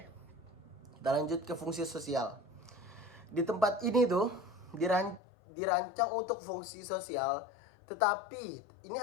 kita lanjut ke fungsi sosial. Di tempat ini tuh dirancang untuk fungsi sosial, tetapi ini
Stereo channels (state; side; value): drops out; right; at 5.2 s